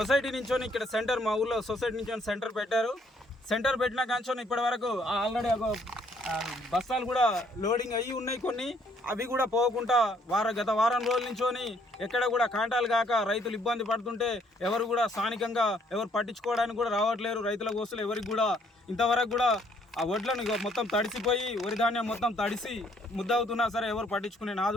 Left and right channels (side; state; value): both; normal; correlation 0.66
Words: నుంచి ఇక్కడ సెంటర్, మా ఊళ్ళో సొసైటీ నుంచి సెంటర్ పెట్టారు. సెంటర్ పెట్టిన కాంచోని ఇప్పటి వరకు ఆల్రెడీ బస్తాలు కూడా లోడింగ్ అయ్యి ఉన్నాయి కొన్ని, అవి కూడా పోకుండా గత వారం రోజుల నుంచోని ఎక్కడ కూడా కాంటాలు కాక రైతులు ఇబ్బంది పడుతుంటే ఎవరు కూడా స్థానికంగా ఎవరు పట్టించుకోవడానికి కూడా రావట్లేరు. రైతుల కోసలు ఎవరికి కూడా ఇంతవరకు కూడా ఆ వడ్లను మొత్తం తడిసిపోయి వరి ధాన్యం మొత్తం తడిసి ముద్దవుతున్నా సరే ఎవరు పట్టించుకునే